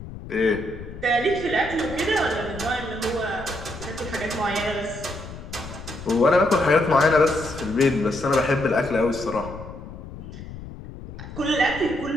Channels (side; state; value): left; noise; rumble, 12 dB below the sound